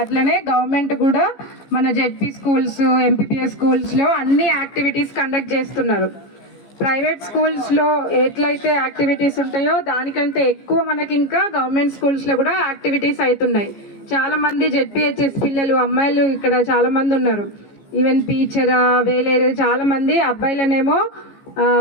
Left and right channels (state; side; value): late; right; 15 ms